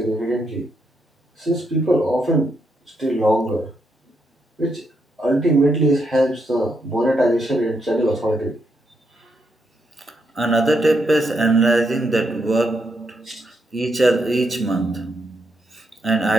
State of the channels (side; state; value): both; normal; correlation 0.79